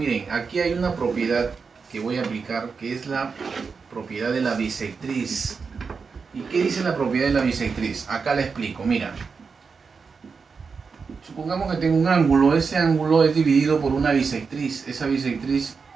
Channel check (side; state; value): left; quieter; 5.2 dB